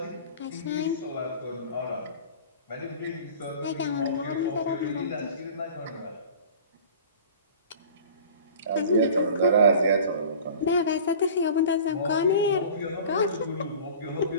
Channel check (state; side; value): inverted; both; correlation -0.42